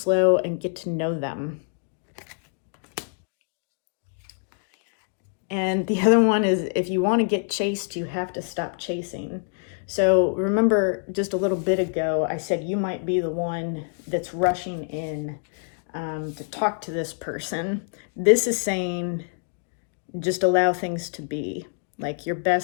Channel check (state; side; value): silent; right; 61 dB below the other